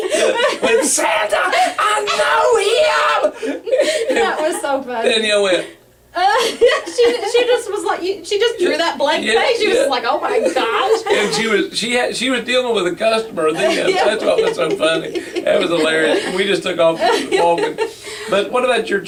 With Santa, I know him! That was so funny. Danielle went, she just was like, she just drew that blank face. She was like, oh my gosh. And she was dealing with a customer. That's what was so funny. That was hilarious. We just took off walking. But what about your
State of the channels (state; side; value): identical; both; correlation 1.00